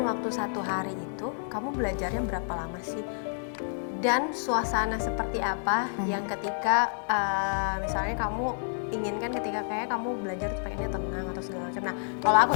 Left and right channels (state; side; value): silent; right; digital silence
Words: waktu 1 hari itu, kamu belajarnya berapa lama sih? Dan suasana seperti apa yang ketika misalnya kamu inginkan ketika kayak kamu belajar tuh pengennya tenang atau segala macam. Nah, kalau aku